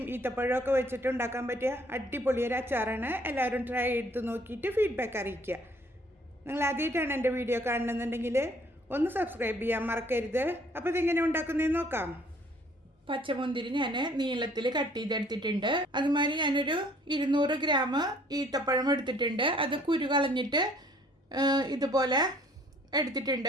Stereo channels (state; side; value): normal; both; correlation 0.59